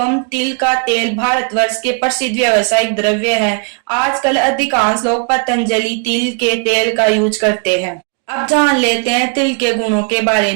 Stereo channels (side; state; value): left; quieter; 37.6 dB